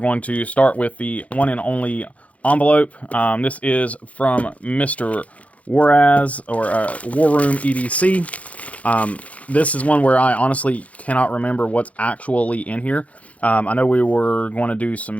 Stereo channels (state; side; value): late; right; 0.066 ms